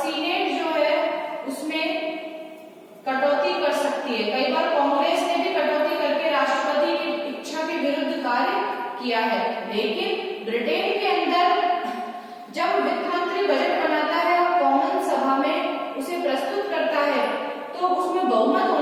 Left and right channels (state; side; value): identical; both; correlation 1.00